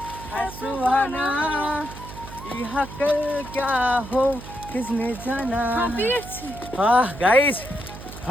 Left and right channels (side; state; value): right; noise; hum, 14 dB below the sound